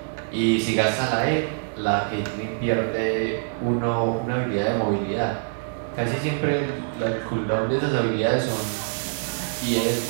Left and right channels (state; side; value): silent; left; digital silence